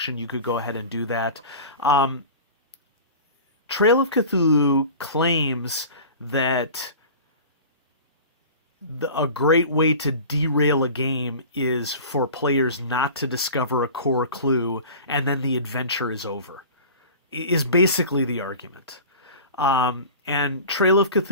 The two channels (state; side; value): inverted; both; correlation -0.38